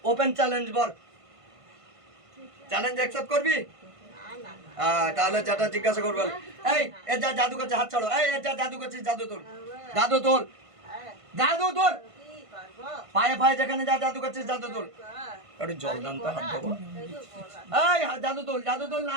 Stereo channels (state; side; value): late; left; 1.5 ms